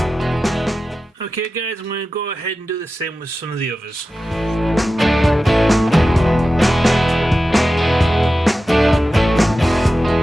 Okay guys, I'm going to go ahead and do the same with some of the others.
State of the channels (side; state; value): both; normal; correlation 0.93